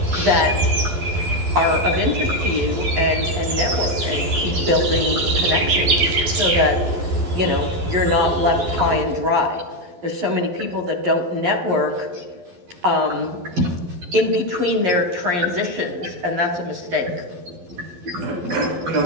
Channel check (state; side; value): late; left; 12 ms